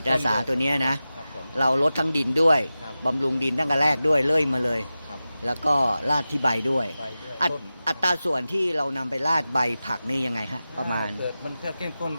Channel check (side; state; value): both; inverted; correlation -0.94